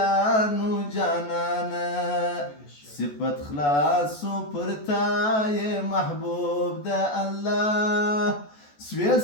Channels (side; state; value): right; late; 14 ms